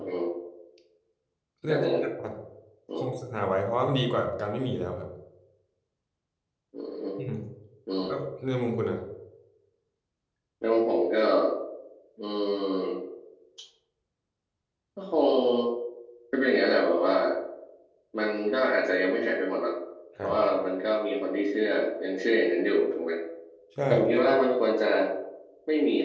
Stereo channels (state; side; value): identical; both; correlation 1.00